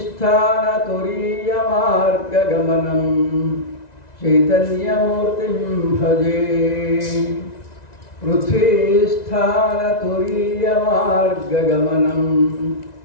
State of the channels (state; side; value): late; right; 1.9 ms